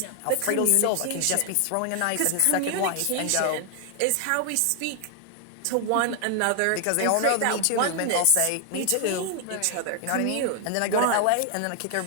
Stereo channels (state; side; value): different; both; correlation 0.00